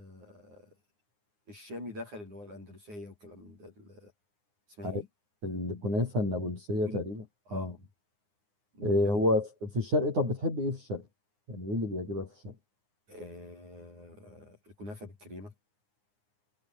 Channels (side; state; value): left; late; 9.7 ms